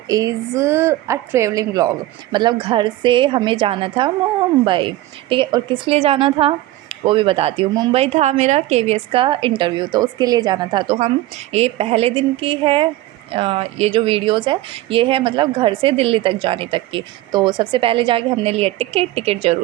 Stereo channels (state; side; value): quieter; left; 16.4 dB